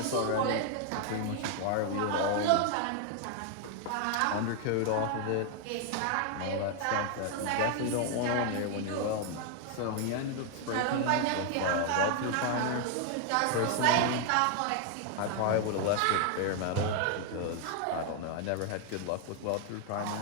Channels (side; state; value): both; different; correlation 0.00